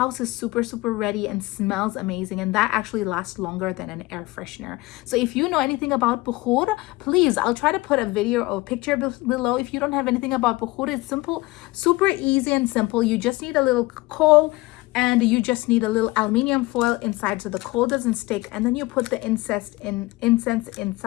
is super, super ready and smells amazing. And that actually lasts longer than an air freshener. So if you know anything about bukhur, please, I'll try to put a video or picture below. If you don't have anything about bukhur, it's simple, super easy and simple. You just need a little coal, and you just need a little aluminium foil inside so the coal doesn't stick, and then you put the incense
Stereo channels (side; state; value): right; quieter; 21.1 dB